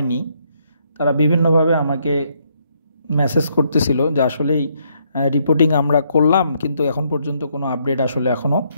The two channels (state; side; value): inverted; both; correlation -0.73